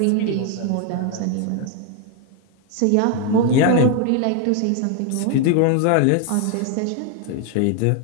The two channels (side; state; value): both; different; correlation 0.01